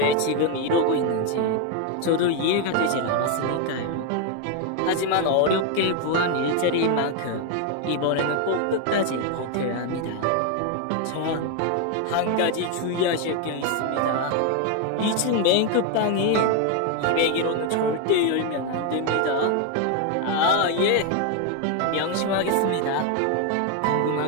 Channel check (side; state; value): both; different; correlation 0.01